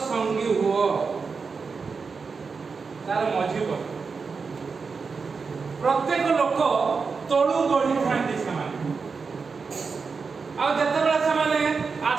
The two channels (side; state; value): left; quieter; 5.0 dB